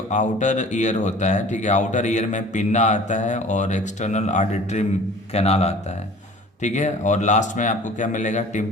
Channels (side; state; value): both; normal; correlation 0.46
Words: आउटर ईयर होता है, ठीक है, आउटर ईयर में पिन्ना आता है और एक्सटर्नल ऑडिटरी कैनाल आता है। ठीक है, और लास्ट में आपको क्या मिलेगा,